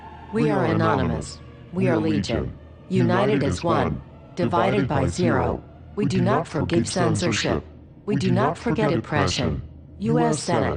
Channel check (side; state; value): both; identical; correlation 1.00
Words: We are anonymous. We are legion. United as one. Divided by zero. We do not forgive censorship. We do not forget oppression. U.S.